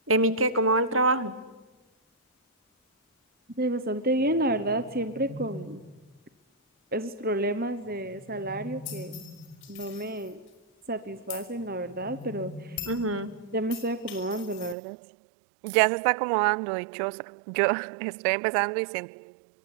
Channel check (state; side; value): drops out; left; at 14.8 s